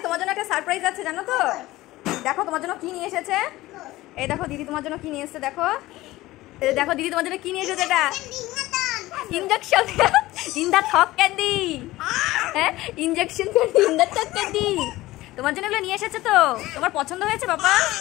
তোমার জন্য একটা সারপ্রাইজ আছে জানো তো? দেখো তোমার জন্য কি নিয়ে এসেছে। এই দেখো দিদি তোমার জন্য কি নিয়ে এসেছে, দেখো। এই দেখো দিদি তোমার জন্য কি নিয়ে এসেছে, এটা ইনজেকশন ইন দা থক ক্যান্ডি। হ্যাঁ, ইনজেকশন ক্যান্ডি ইন দা থক ক্যান্ডি। তোমার জন্য এগুলো নিয়ে এসেছে তো? তোমার পছন্দ হয়েছে বাবা?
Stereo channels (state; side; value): quieter; right; 17.7 dB